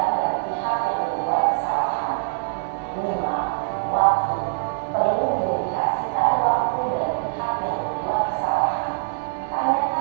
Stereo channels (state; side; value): silent; left; digital silence